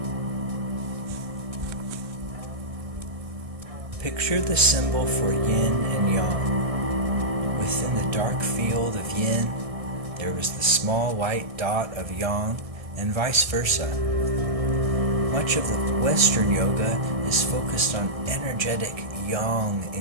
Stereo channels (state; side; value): late; left; 1.6 ms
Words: Picture the symbol for yin and yang. Within the dark field of yin, there was the small white dot of yang, and vice versa. Much of the Western yoga is focused on energetic yang